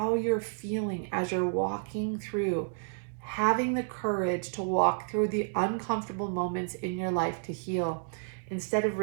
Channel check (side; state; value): left; silent; 57 dB below the other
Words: you're feeling as you're walking through, having the courage to walk through the uncomfortable moments in your life to heal instead of